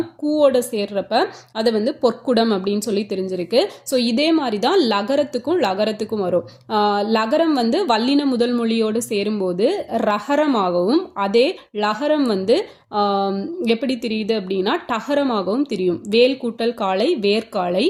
கூவோட சேர்றப்ப அதை வந்து பொற்குடம் அப்படின்னு சொல்லி தெரிஞ்சிருக்கு. ஸோ இதே மாதிரி தான் லகரத்துக்கும் வரும். லகரம் வந்து வல்லின முதல் மொழியோடு சேரும்போது ரகரமாகவும், அதே லகரம் வந்து எப்படி தெரியுது அப்படின்னா டகரமாகவும் தெரியும். வேல் கூட்டல் காளை வேர்காளை,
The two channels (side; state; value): both; identical; correlation 1.00